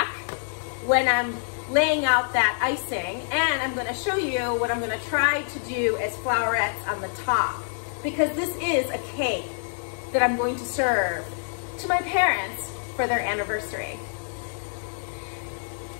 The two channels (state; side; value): silent; right; digital silence